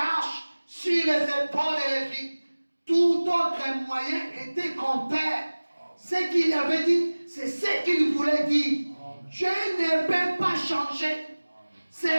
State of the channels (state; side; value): inverted; both; correlation -1.00